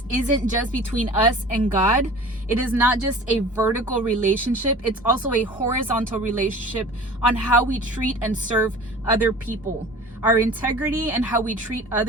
isn't just between us and God. It is not just a vertical relationship. It's also a horizontal relationship on how we treat and serve other people. Our integrity and how we treat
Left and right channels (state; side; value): normal; both; correlation 0.41